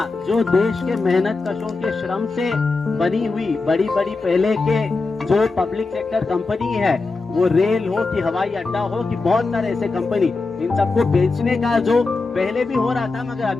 जो देश के मेहनत कशों के श्रम से बनी हुई बड़ी बड़ी पहले के जो पब्लिक सेक्टर कंपनी है, वो रेल हो कि हवाई अड्डा हो कि बहुत सारे ऐसे कंपनी, इन सबको बेचने का जो पहले भी हो रहा था, मगर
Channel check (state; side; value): quieter; right; 3.8 dB